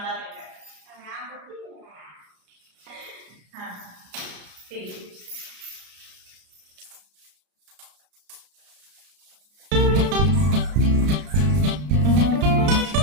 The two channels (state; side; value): late; left; 33 ms